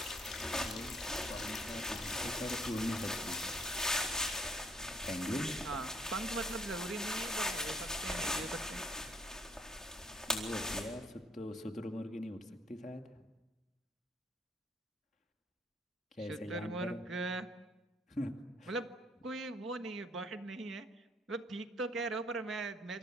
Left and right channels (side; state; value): both; normal; correlation 0.64